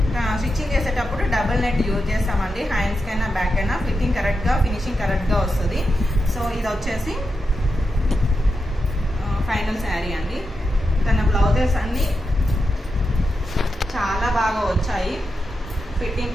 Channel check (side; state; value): both; normal; correlation 0.88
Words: చేసేటప్పుడు డబుల్ నెట్ యూజ్ చేస్తామండి. హ్యాండ్స్కి అయినా బ్యాక్ అయినా ఫిట్టింగ్ కరెక్ట్గా ఫినిషింగ్ కరెక్ట్గా వస్తుంది. సో ఇది వచ్చేసి ఫైనల్ శారీ అండి. తన బ్లౌజెస్ అన్నీ చాలా బాగా వచ్చాయి.